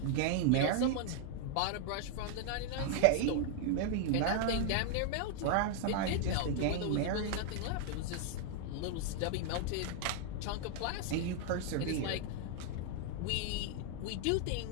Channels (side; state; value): both; different; correlation 0.00